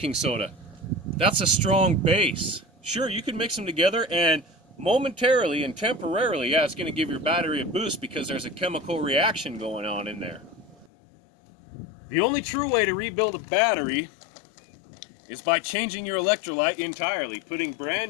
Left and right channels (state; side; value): drops out; right; at 10.9 s